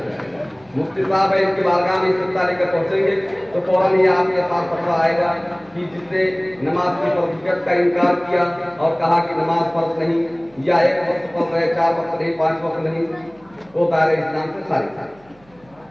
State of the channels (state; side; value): noise; right; hum, 30 dB below the sound